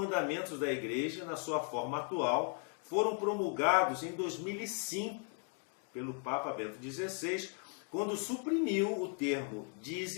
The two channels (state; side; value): quieter; right; 38.5 dB